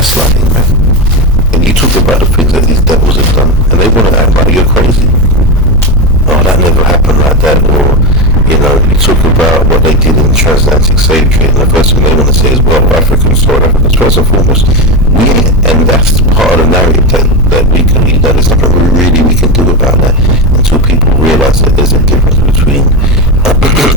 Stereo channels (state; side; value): normal; both; correlation 0.15